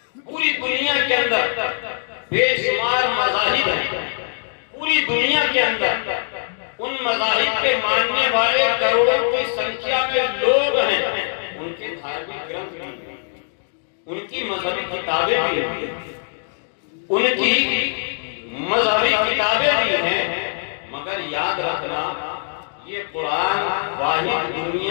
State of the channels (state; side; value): silent; right; digital silence